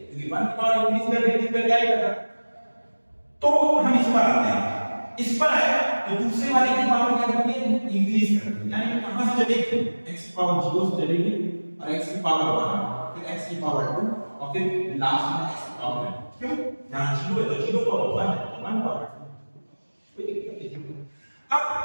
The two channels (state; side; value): inverted; both; correlation -1.00